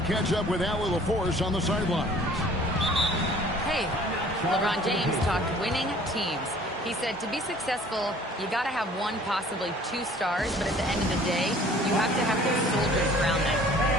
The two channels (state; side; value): normal; both; correlation 0.52